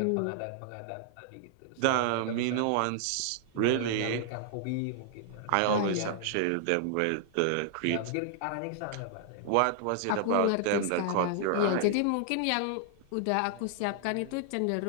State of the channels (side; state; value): both; different; correlation 0.00